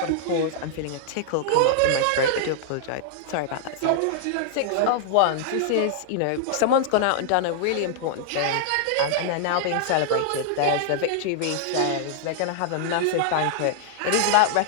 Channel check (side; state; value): both; different; correlation -0.01